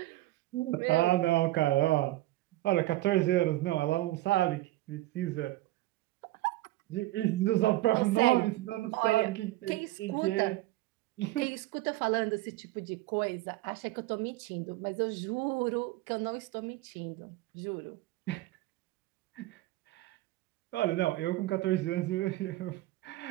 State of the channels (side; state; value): left; quieter; 17.2 dB